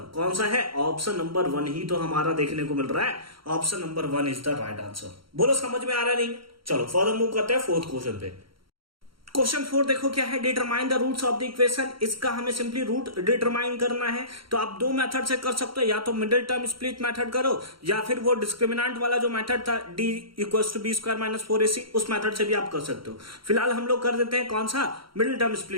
कौन सा है? ऑप्शन नंबर 1 ही तो हमारा देखने को मिल रहा है। Option number 1 is the right answer. बोलो समझ में आ रहा नहीं? चलो फर्दर मूव करते हैं फोर्थ क्वेश्चन पे। क्वेश्चन 4 देखो क्या है, determine the roots of the equation. इसका हमें सिंपली रूट डिटरमाइन करना है। तो आप दो मेथड से कर सकते हो, या तो मिडिल टर्म स्प्लिट मेथड करो या फिर वो डिस्क्रिमिनेंट वाला जो मेथड था d equals to b² - 4ac, उस मेथड से भी आप कर सकते हो। फिलहाल हम लोग कर देते हैं कौन सा? Middle term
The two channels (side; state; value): left; late; 0.74 ms